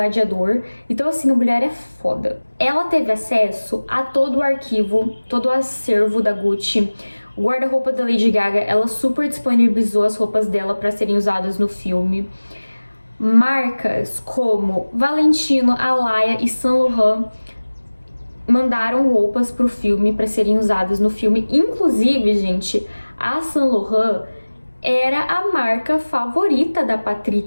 Então, assim, a mulher é foda. Ela teve acesso a todo o arquivo, todo o acervo da Gucci. O guarda-roupa da Lady Gaga, ela super disponibilizou as roupas dela para serem usadas no filme. Marcas como Valentino, Alaïa e Saint Laurent mandaram roupas pro filme para serem usadas no filme. Inclusive, gente, a Saint Laurent era a marca favorita da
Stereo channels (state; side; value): inverted; both; correlation -1.00